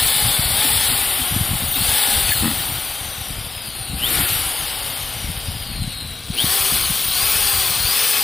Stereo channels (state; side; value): quieter; right; 3.8 dB